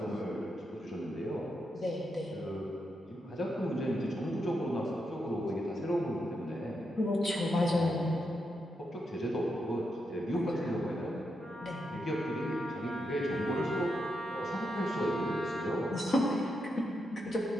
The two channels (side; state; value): both; normal; correlation 0.83